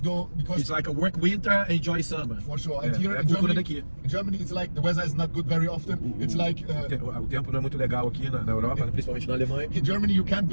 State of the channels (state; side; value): inverted; both; correlation -1.00